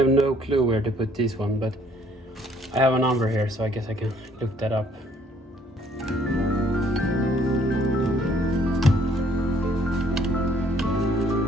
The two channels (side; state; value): both; normal; correlation 0.63